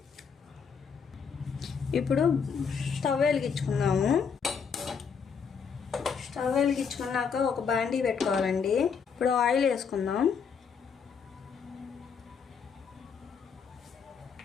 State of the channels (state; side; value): quieter; right; 6.3 dB